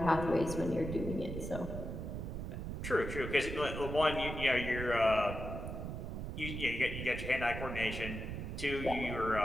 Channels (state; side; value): noise; right; rumble, 5 dB below the sound